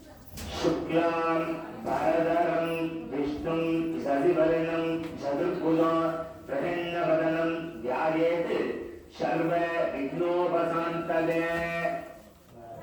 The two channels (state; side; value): identical; both; correlation 1.00